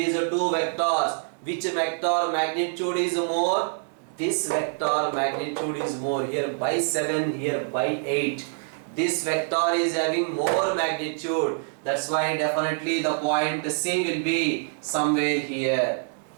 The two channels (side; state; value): left; silent; digital silence